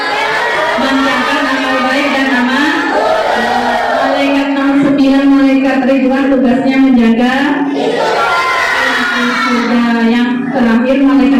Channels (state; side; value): identical; both; correlation 1.00